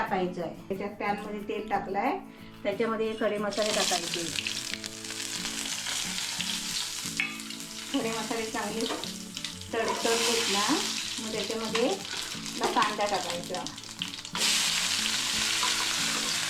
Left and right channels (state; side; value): identical; both; correlation 1.00